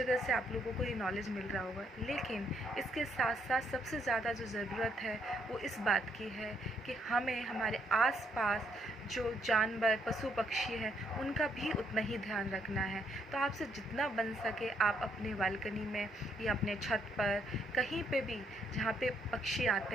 से आप लोगों को ये नॉलेज मिल रहा होगा। लेकिन इसके साथ साथ सबसे ज़्यादा जो ज़रूरत है वो इस बात की है कि हमें हमारे आसपास जो जानवर, पशु पक्षी हैं, उनका भी उतना ही ध्यान रखना है। तो आपसे जितना बन सके आप अपने बालकनी में या अपने छत पर, कहीं पे भी जहाँ पे पक्षी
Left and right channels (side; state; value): both; normal; correlation 0.72